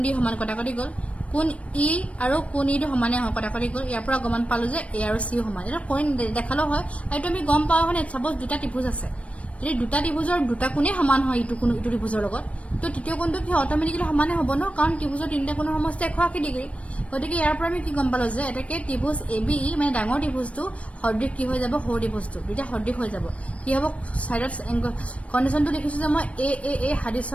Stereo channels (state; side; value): late; right; 0.064 ms